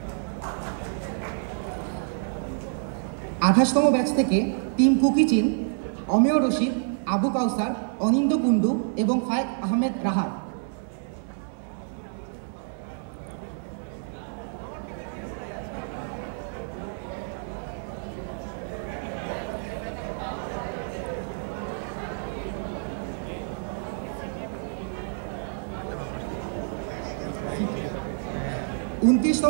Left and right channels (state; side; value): silent; left; 59 dB below the other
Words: 28তম ব্যাচ থেকে টিম কুকিচিন অমিয় রশিদ, আবু কাউসার, অনিন্দ কুন্ডু এবং ফায়েক আহমেদ রাহাত।